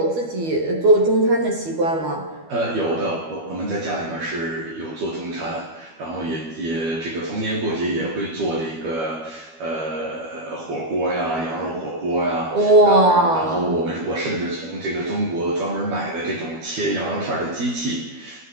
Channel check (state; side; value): late; left; 12 ms